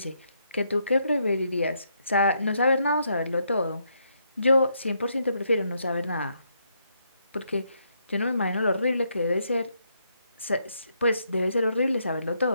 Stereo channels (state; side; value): inverted; both; correlation -0.77